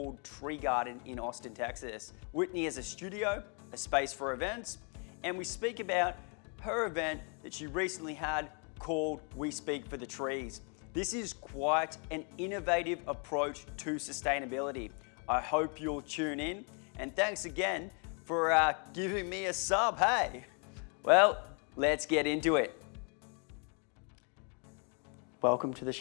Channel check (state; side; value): quieter; right; 37.3 dB